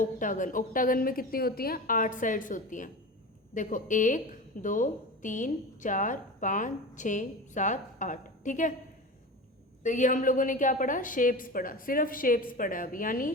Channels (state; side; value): normal; both; correlation 0.30